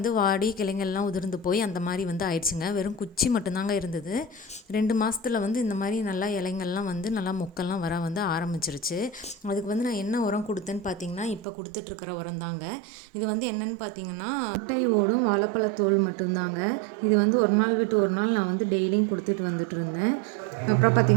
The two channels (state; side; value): drops out; left; at 11.5 s